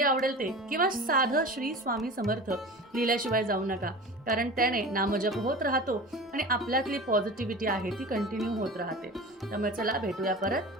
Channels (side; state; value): both; normal; correlation 0.35